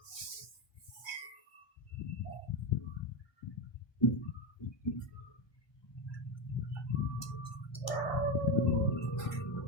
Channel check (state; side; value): late; right; 1.2 ms